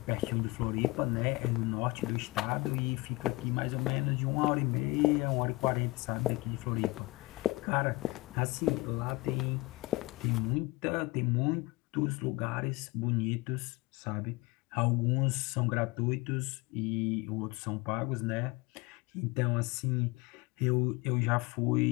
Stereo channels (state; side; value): quieter; right; 22.1 dB